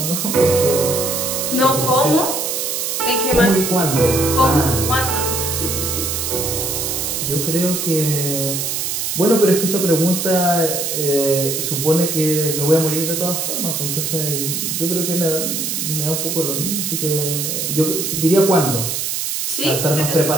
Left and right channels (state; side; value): noise; right; hiss, 2 dB below the sound